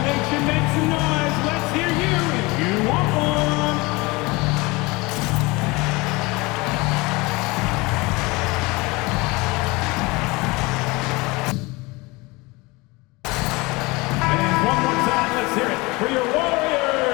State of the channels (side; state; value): right; quieter; 24.1 dB